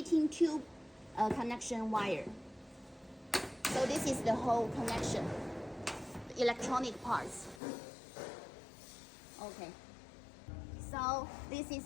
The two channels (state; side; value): drops out; right; at 7.6 s